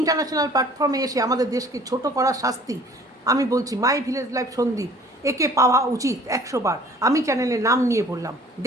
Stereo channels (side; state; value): both; normal; correlation 0.52